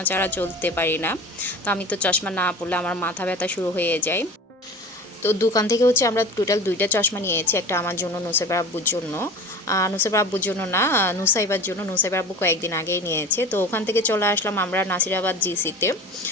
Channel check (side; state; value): both; normal; correlation 0.36